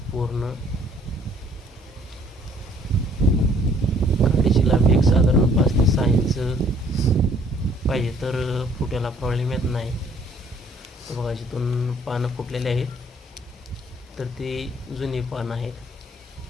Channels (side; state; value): both; normal; correlation 0.60